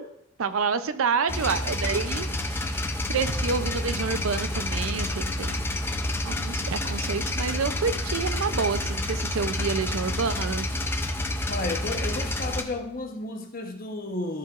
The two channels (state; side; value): normal; both; correlation 0.21